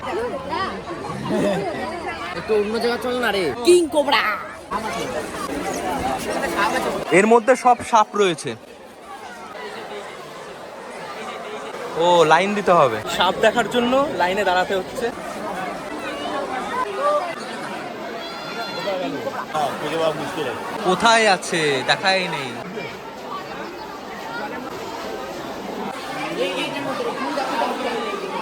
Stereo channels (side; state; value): both; identical; correlation 1.00